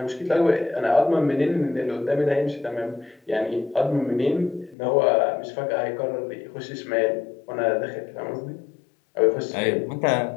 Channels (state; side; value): drops out; right; at 4.8 s